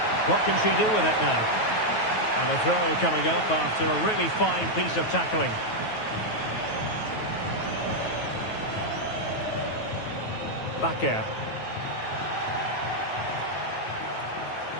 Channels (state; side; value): late; right; 9.3 ms